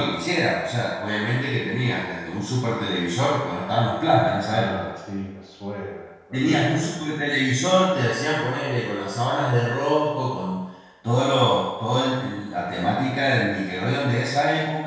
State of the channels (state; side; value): identical; both; correlation 1.00